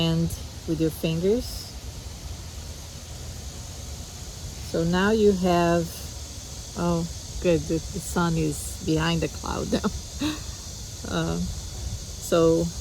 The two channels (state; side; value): identical; both; correlation 1.00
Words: with your fingers. So now you have, oh good, the sun is behind the cloud now. So